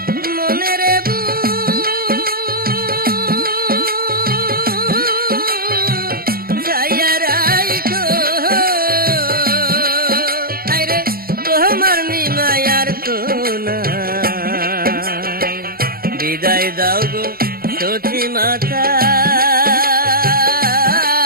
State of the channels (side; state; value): left; late; 0.43 ms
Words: মনের বুঝাইয়া রাইখো, আরে তোমার নিমায়ার তো নাই। বিদায় দাও গো সচি মাতা,